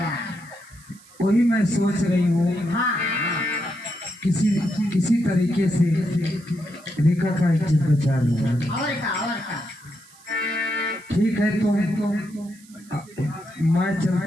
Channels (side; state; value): right; noise; hiss, 25 dB below the sound